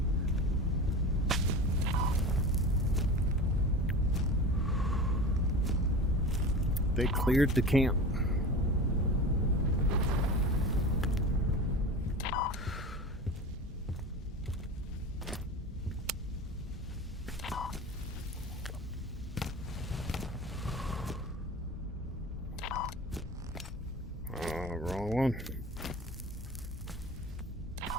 They cleared the camp. Wrong one.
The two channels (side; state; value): both; normal; correlation 0.32